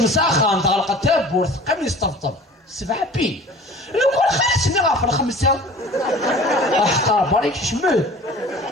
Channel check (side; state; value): both; normal; correlation 0.44